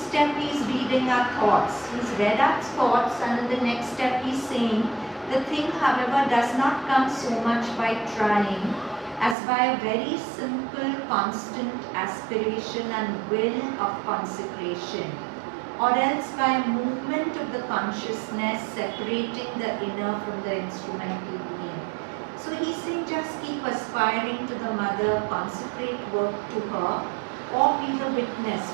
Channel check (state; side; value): drops out; left; at 9.3 s